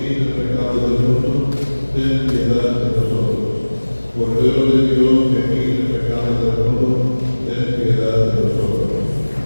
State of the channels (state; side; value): inverted; both; correlation -1.00